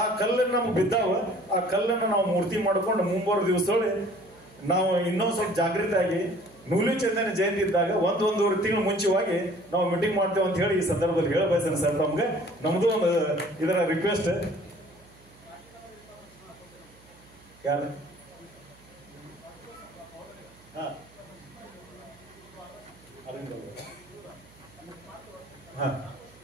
ಕಲ್ಲನ್ನು ನಮ್ಗೆ ಬಿದ್ದಾವ, ಆ ಕಲ್ಲನ್ನು ನಾವು ಮೂರ್ತಿ ಮಾಡ್ಕೊಂಡು ಮುಂಬರುವ ದಿವಸದೊಳಗೆ ನಾವು ಇನ್ನೊಂದು ಸ್ವಲ್ಪ ಜಾಗೃತಿ ಆಗಿ ನೂಲಿ ಚಂದನ ಜಯಂತಿ ಇದ್ದಾಗ 1-1.5 ತಿಂಗಳು ಮುಂಚೆವಾಗಿ ನಾವು ಮೀಟಿಂಗ್ ಮಾಡ್ತೇವೆ ಅಂತ ಹೇಳಿ ಈ ಸಂದರ್ಭದಲ್ಲಿ ಹೇಳ ಬಯಸ್ತೇನೆ ಸರ್. ನಮ್ಗೆ ನಮ್ದು ಒಂದು ಇದರ ರಿಕ್ವೆಸ್ಟ್. ಯಾರು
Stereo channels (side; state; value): right; noise; hum, 27 dB below the sound